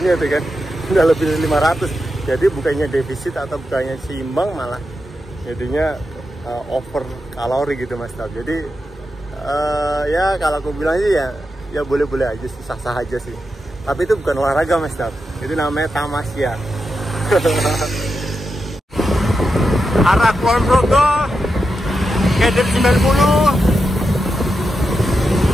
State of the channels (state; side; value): normal; both; correlation 0.88